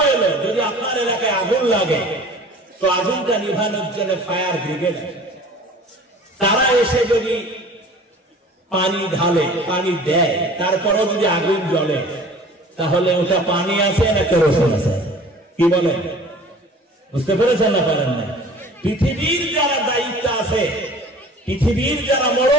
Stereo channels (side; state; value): both; normal; correlation 0.45